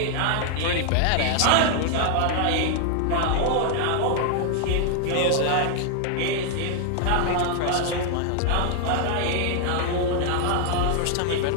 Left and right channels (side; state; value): both; different; correlation 0.00